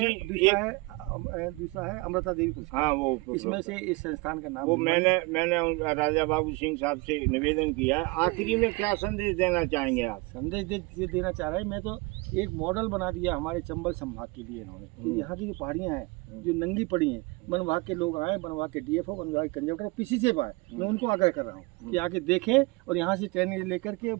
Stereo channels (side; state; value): left; quieter; 25.8 dB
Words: दूसरा है अमृता देवी पुरस्कार। हाँ, वो इसमें से इस संस्थान का नाम वो मैंने राजा बाबू सिंह साहब से निवेदन किया है। आखिरी में क्या संदेश देना चाहेंगे आप? संदेश देना चाह रहे हैं, मैं तो एक मॉडल बना दिया हमारे चंबल संभाग के लिए इन्होंने, कि यहाँ की जो पहाड़ियाँ हैं जो नंगी पड़ी हैं, वन विभाग के लोग आए, वन विभाग के DFO, वन विभाग के कंजक्टर, किसी से आए, मैं उनको आग्रह कर रहा हूँ कि आके देखें और यहाँ से ट्रेनिंग लेकर के